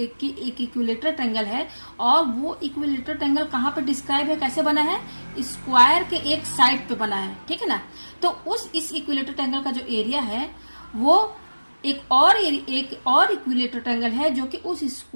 ट्रायंगल है और वो इक्विलेटरल ट्रायंगल कहाँ पे डिस्क्राइब है, कैसे बना है, स्क्वायर के एक साइड पे बना है। ठीक है ना। तो इस इक्विलेटरल ट्रायंगल का जो एरिया है वो एक और इक्विलेटरल ट्रायंगल है जो कि उस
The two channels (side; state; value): both; inverted; correlation -1.00